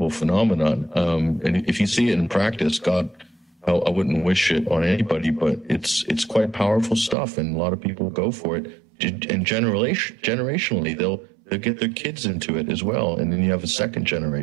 phenomenon. And if you see it in practice, God, I wouldn't wish it on anybody, but it's quite powerful stuff, and a lot of people go for it. And generationally, they'll get their kids into it as well, and then you have a second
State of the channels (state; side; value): drops out; left; at 7.2 s